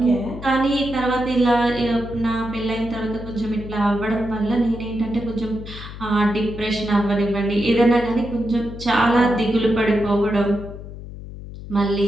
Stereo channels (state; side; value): noise; left; hum, 12 dB below the sound